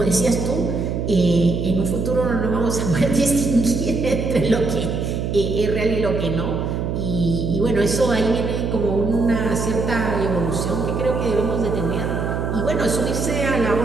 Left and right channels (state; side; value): noise; right; hum, 2 dB below the sound